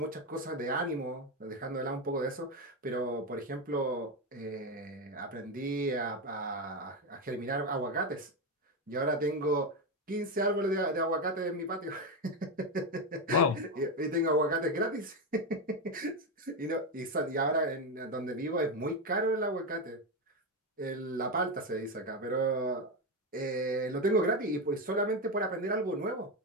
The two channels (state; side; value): normal; both; correlation 0.11